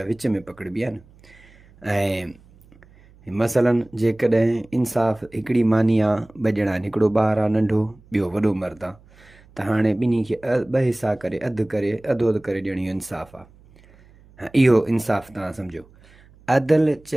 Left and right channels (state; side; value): noise; right; hum, 27 dB below the sound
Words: विच में पकड़िबी आहे न। ऐं मसलन जेकॾहिं इंसाफ़ हिकिड़ी मानी आहे, ॿ ॼणा आहिनि, हिकिड़ो ॿारु आहे नंढो, ॿियो वॾो मर्द आहे, त हाणे ॿिन्ही खे ॿ हिसा करे अधु अधु करे ॾियण इहो इंसाफ़ आहे। इहो इंसाफ़ तव्हां सम्झो। अदल